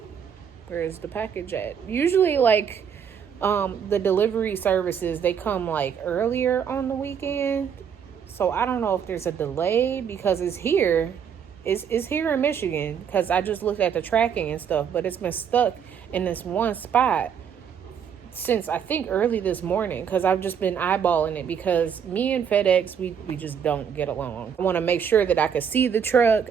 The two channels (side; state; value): left; quieter; 7.7 dB